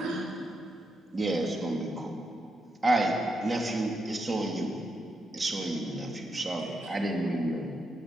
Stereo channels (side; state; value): both; normal; correlation 0.83